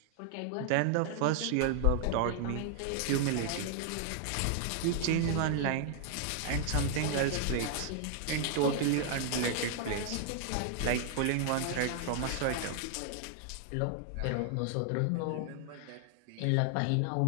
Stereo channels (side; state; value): both; different; correlation 0.00